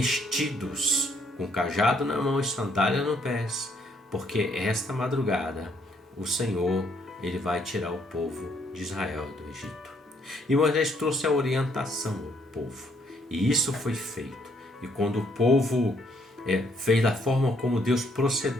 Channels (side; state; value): both; normal; correlation 0.69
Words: com cajado na mão e sandália no pés, porque esta madrugada o Senhor, ele vai tirar o povo de Israel do Egito. E Moisés trouxe a orientação ao povo, e isso foi feito. E quando o povo fez da forma como Deus